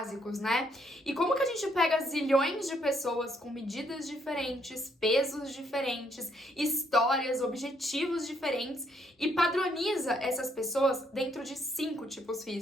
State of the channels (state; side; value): normal; both; correlation 0.71